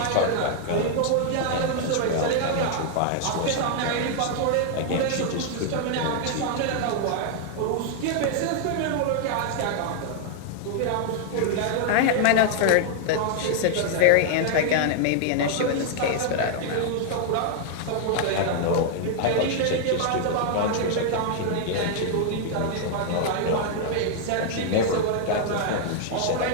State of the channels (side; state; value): both; different; correlation 0.00